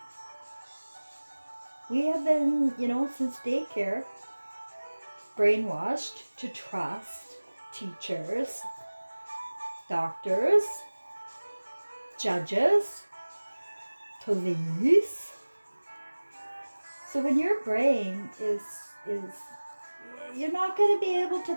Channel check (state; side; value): inverted; both; correlation -1.00